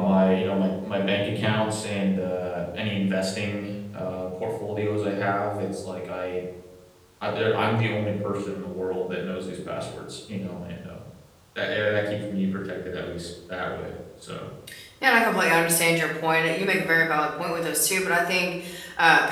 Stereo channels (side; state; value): both; identical; correlation 1.00